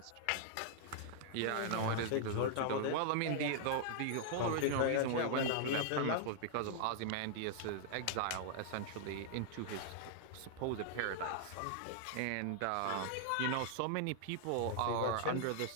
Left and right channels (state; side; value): different; both; correlation -0.01